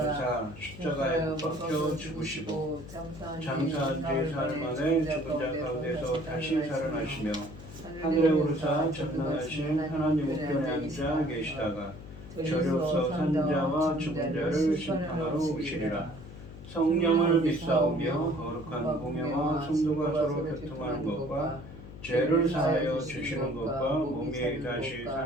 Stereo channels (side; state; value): left; noise; hum, 15 dB below the sound